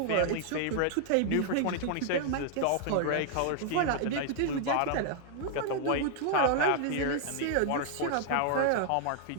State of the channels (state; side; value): different; both; correlation 0.00